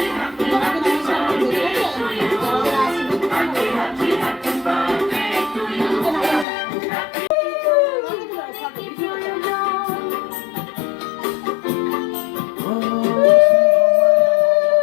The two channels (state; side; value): drops out; right; at 6.5 s